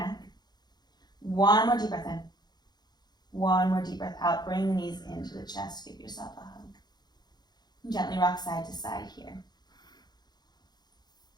One more deep breath in. One more deep breath out. Bring the knees into the chest. Give yourself a hug. And gently rock side to side here.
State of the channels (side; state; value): right; late; 0.20 ms